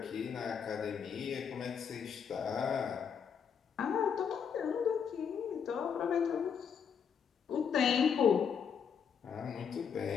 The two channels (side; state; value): right; quieter; 7.1 dB